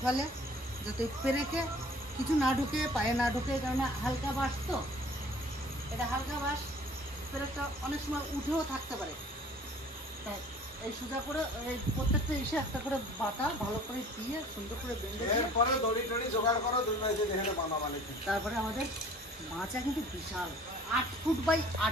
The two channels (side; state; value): both; normal; correlation 0.49